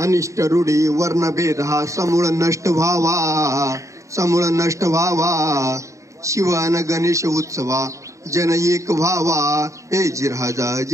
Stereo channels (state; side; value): late; left; 0.15 ms